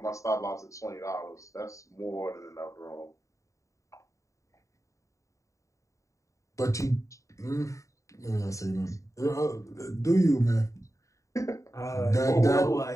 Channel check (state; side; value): late; right; 0.15 ms